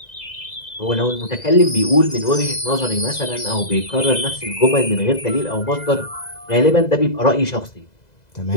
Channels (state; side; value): late; right; 2.0 ms